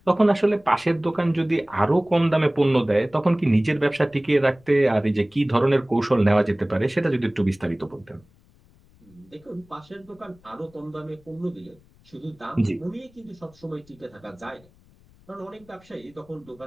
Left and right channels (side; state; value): left; noise; rumble, 29 dB below the sound